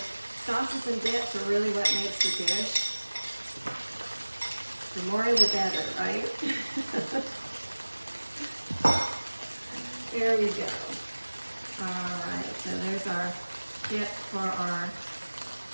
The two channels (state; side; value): inverted; both; correlation -1.00